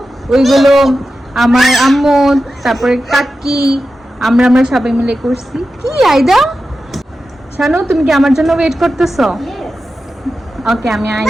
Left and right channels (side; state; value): both; normal; correlation 0.92